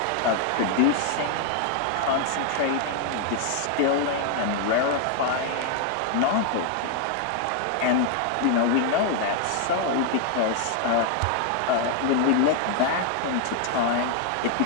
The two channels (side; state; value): both; different; correlation 0.00